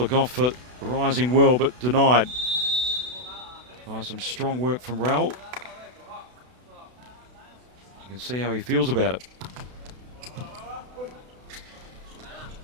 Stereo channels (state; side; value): late; left; 32 ms